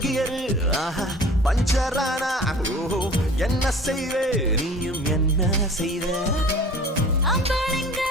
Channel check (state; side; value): normal; both; correlation 0.44